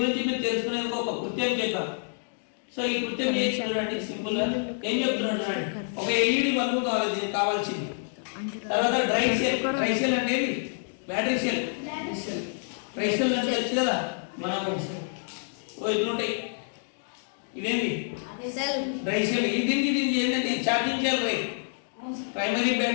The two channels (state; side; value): silent; right; digital silence